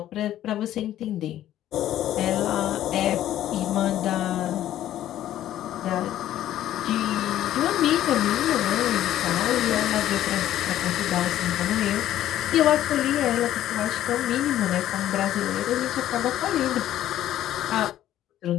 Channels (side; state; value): right; quieter; 12.5 dB